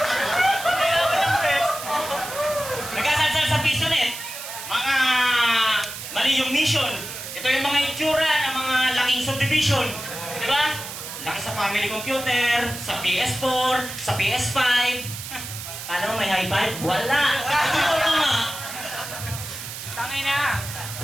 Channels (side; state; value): right; noise; hiss, 9 dB below the sound